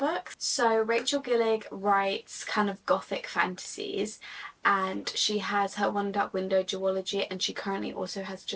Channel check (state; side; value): identical; both; correlation 1.00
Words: So Rachel Gillig writes kind of gothic fantasies, and she has her One Dark Window duology, and she currently also has